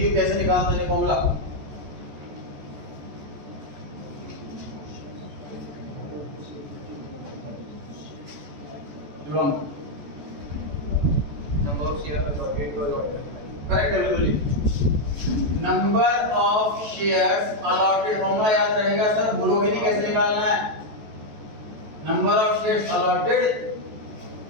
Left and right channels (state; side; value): late; left; 14 ms